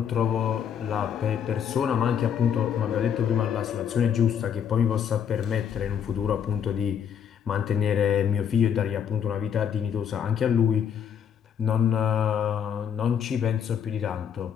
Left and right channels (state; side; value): quieter; right; 8.2 dB